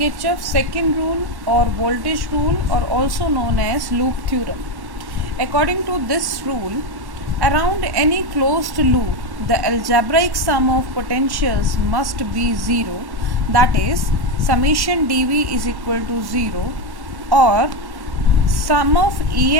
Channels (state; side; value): late; left; 1.1 ms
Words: second rule or voltage rule, or also known as loop theorem. According to this rule, around any closed loop, the algebraic sum of potentials must be 0, that is, summation dV is equal to 0, or sum of